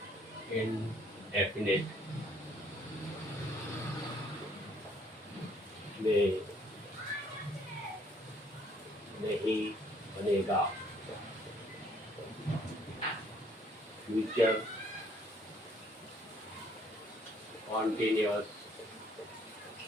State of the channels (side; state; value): both; normal; correlation 0.63